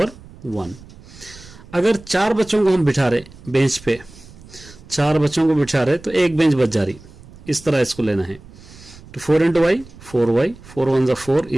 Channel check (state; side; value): noise; right; rumble, 21 dB below the sound